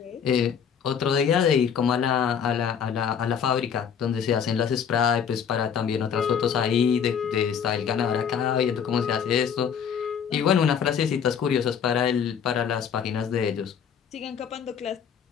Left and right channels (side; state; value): right; quieter; 7.6 dB